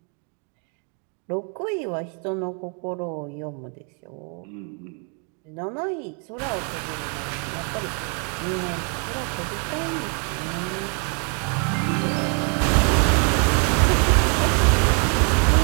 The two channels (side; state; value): left; quieter; 39.2 dB